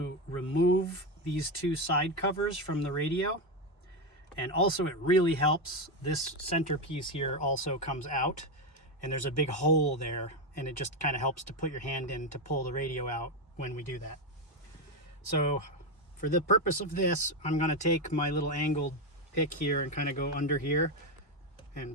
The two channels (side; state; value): both; normal; correlation 0.10